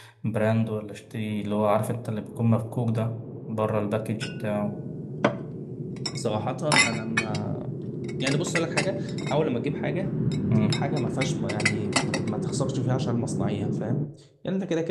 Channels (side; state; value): both; identical; correlation 1.00